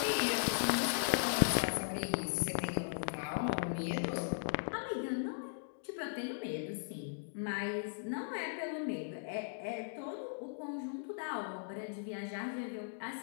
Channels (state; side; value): silent; right; digital silence